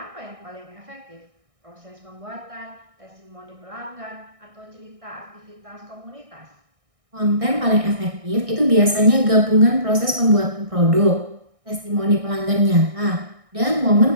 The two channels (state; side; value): late; left; 1.6 ms